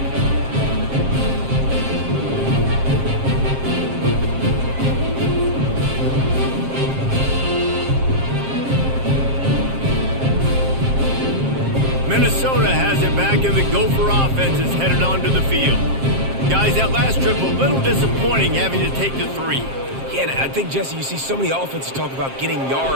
Minnesota has it back, and the Gopher offense is headed onto the field. Guys, that last trip a little disappointing having to take the 3. Yeah, and I think, Jesse, you see so many offenses talk about getting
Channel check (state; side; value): late; left; 7.5 ms